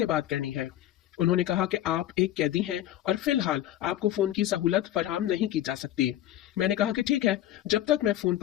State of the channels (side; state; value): right; quieter; 13.1 dB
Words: बात करनी है। उन्होंने कहा कि आप एक कैदी हैं और फिलहाल आपको फोन की सहूलत फराहम नहीं की जा सकती। मैंने कहा कि ठीक है, जब तक मैं फोन